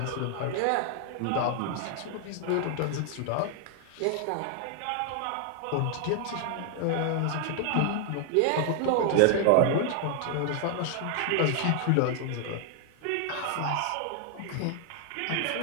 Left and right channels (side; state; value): both; different; correlation 0.00